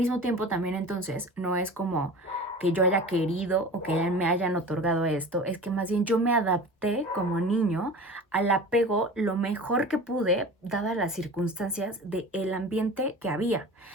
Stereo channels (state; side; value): normal; both; correlation 0.37